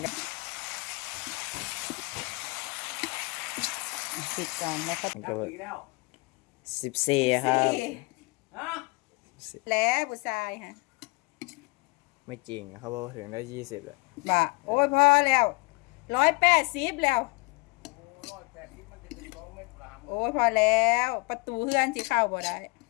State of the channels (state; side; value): quieter; right; 27.2 dB